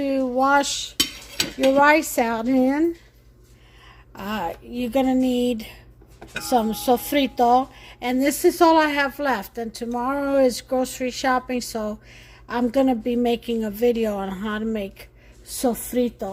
wash your rice out in. You're going to need some sofrito. And this is all I have left. And tomorrow is grocery shopping, so I'm going to be making a video on how to make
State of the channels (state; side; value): identical; both; correlation 1.00